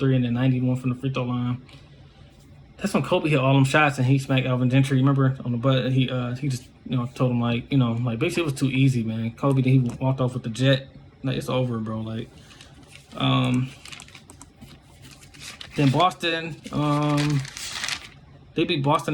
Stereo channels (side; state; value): both; identical; correlation 1.00